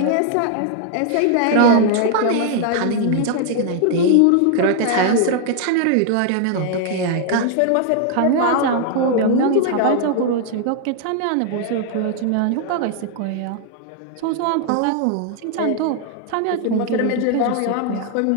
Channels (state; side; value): different; both; correlation 0.00